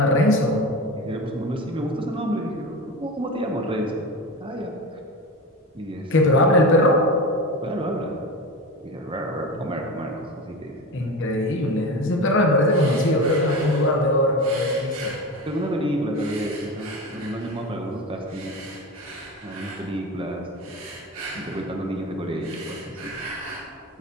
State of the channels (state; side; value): normal; both; correlation 0.26